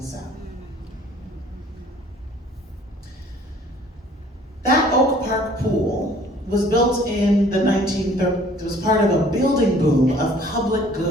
South. That Oak Park pool was built in the 1930s. It was part of a building boom of public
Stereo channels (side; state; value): both; normal; correlation 0.55